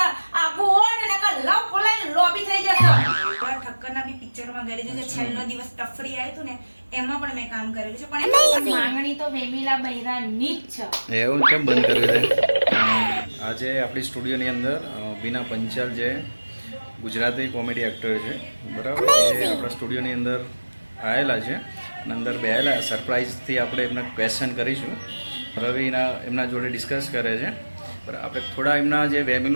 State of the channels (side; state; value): both; inverted; correlation -1.00